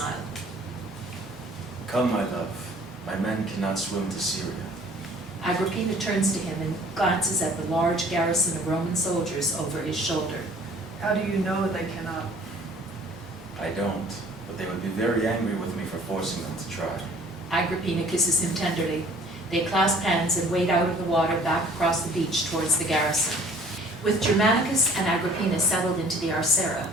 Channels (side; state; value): both; normal; correlation 0.53